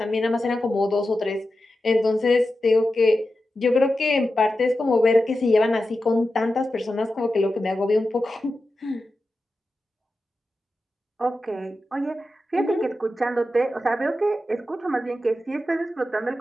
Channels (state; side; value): normal; both; correlation 0.91